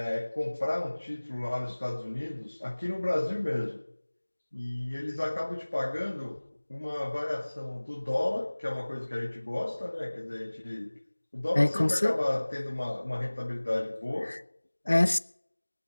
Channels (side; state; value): both; inverted; correlation -1.00